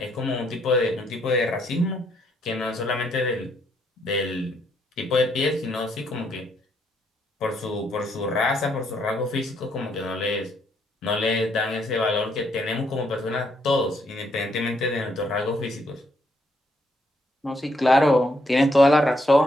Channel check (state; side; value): normal; both; correlation 0.73